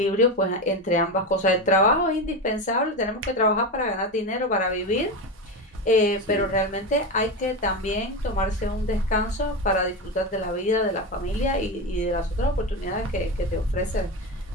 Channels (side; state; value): both; normal; correlation 0.18